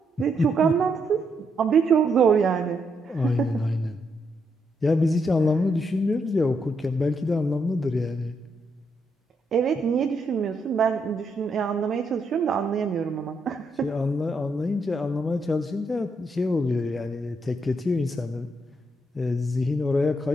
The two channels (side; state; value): both; normal; correlation 0.78